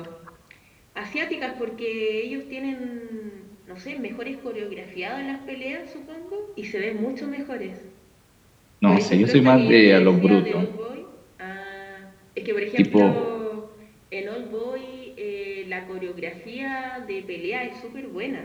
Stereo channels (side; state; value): both; identical; correlation 1.00